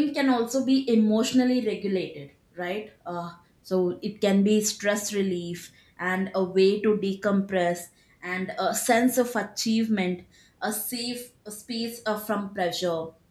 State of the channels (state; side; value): identical; both; correlation 1.00